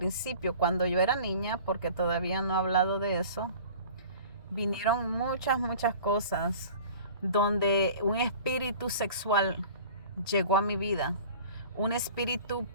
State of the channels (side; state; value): both; inverted; correlation -0.43